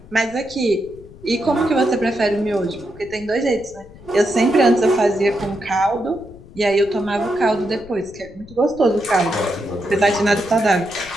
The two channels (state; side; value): noise; left; rumble, 20 dB below the sound